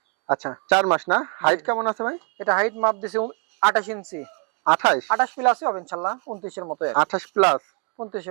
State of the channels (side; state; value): left; quieter; 37.1 dB